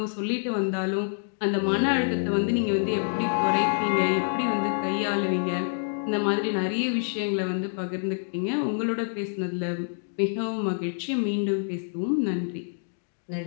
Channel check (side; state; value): right; silent; digital silence